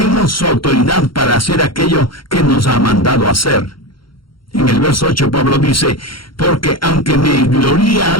su autoridad para hacer aquello que nos ha mandado hacer. En el verso 8 Pablo dice: porque aunque me gloría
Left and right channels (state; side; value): late; right; 0.73 ms